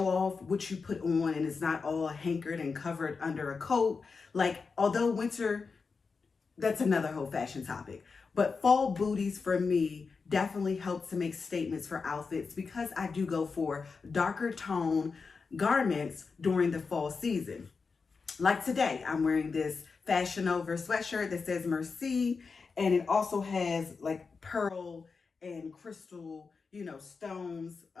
off what you put on and it's not all hankered and covered under a coat. Like, although winter, that's another whole fashion topic. But fall booties for me definitely help to make statements for outfits because I do go for darker tone garments during the fall season. Like today, I'm wearing this Fashion Over sweatshirt that says Merci, and it also has like pearl and crystal, stones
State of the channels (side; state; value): right; quieter; 4.8 dB